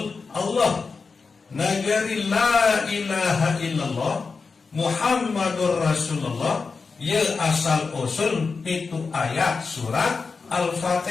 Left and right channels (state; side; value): quieter; right; 4.7 dB